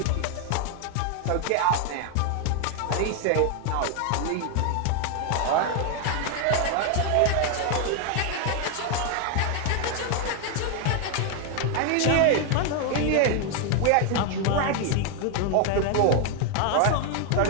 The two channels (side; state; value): both; different; correlation 0.01